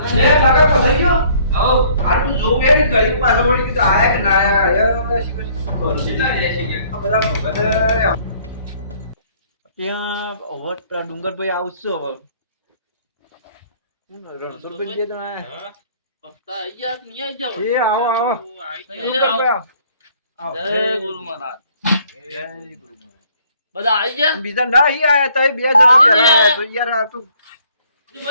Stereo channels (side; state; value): both; inverted; correlation -0.60